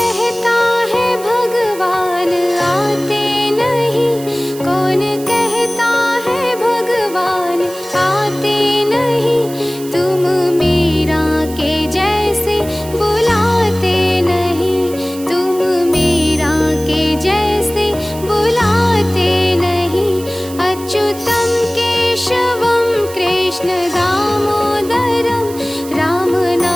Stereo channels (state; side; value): noise; right; hiss, 16 dB below the sound